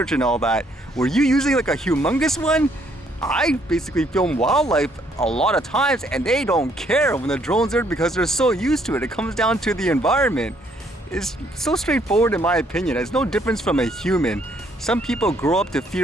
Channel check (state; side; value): normal; both; correlation 0.68